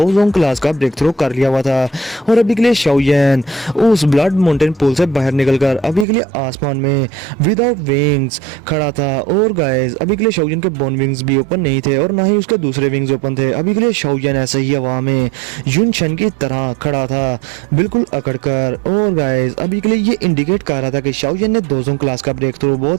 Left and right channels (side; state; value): left; drops out; at 6.1 s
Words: जोन क्लास का ब्रेक थ्रू कर लिया हुआ था और अभी के लिए शाओयन उस ब्लड माउंटेन पूल से बाहर निकलकर अभी के लिए आसमान में विदाउट विंग्स खड़ा था। और गाइस अभी के लिए शाओयन के बोन विंग्स भी ओपन नहीं थे और ना ही उसके दूसरे विंग्स ओपन थे। अभी के लिए शाओयन ऐसे ही हवा में युनशन की तरह खड़ा था, बिल्कुल अकड़कर। और गाइस अभी के लिए ये इंडिकेट कर रहा था कि शाओयन ने 2 जोन क्लास का ब्रेक थ्रू